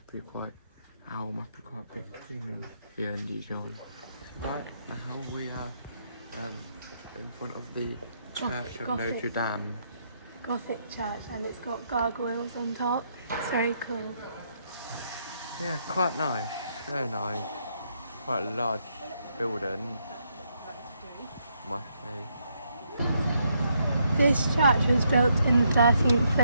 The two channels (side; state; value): both; inverted; correlation -0.76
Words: be quite a big thing here in Dijon. Right now we are in front of the Church of Notre Dame. Gothic church, and it's got gargoyles on top. It's very cool. Yeah, quite nice, very nice. Quite a large building, must say. This church was built in the 13th